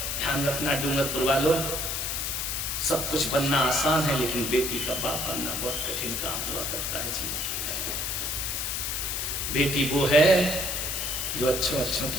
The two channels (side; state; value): left; noise; hiss, 1 dB below the sound